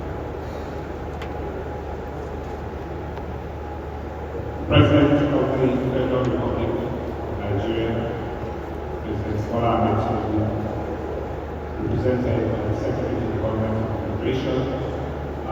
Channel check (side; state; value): both; identical; correlation 1.00